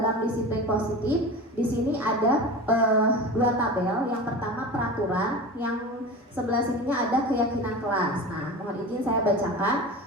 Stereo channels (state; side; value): normal; both; correlation 0.31